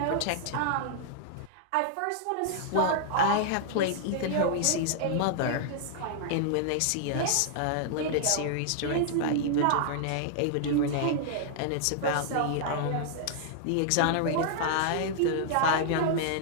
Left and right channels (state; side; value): different; both; correlation -0.01